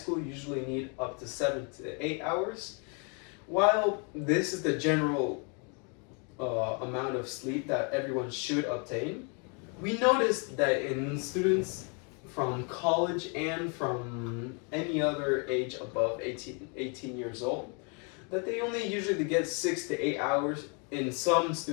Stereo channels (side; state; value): right; quieter; 36.5 dB